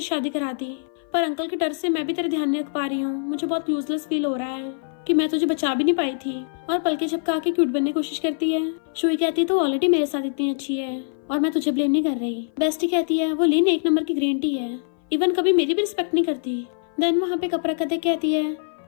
शादी करा दी, पर अंकल के डर से मैं भी तेरे ध्यान नहीं रख पा रही हूँ। मुझे बहुत यूजलेस फील हो रहा है कि मैं तुझे बचा भी नहीं पाई थी। और पलके झपका के क्यूट बनने की कोशिश करती है। शुई कहती है तो ऑलरेडी मेरे साथ इतनी अच्छी है और मैं तुझे ब्लेम नहीं कर रही। बेस्टी कहती है वो लीन 1 नंबर की ग्रीन टी है, इवन कभी मेरी भी रिस्पेक्ट नहीं करती। देन वहाँ पे कप रखा देख कहती है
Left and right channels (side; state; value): right; silent; 57 dB below the other